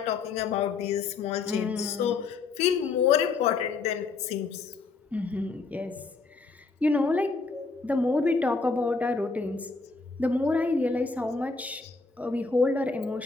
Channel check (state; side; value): quieter; right; 4.3 dB